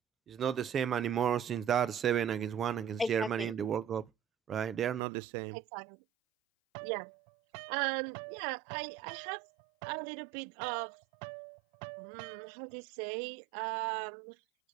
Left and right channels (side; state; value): left; drops out; at 5.0 s